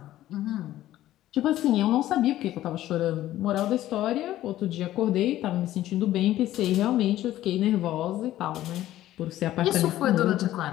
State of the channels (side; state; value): right; quieter; 14.0 dB